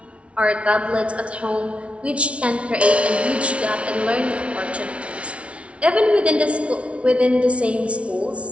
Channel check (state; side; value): late; left; 0.061 ms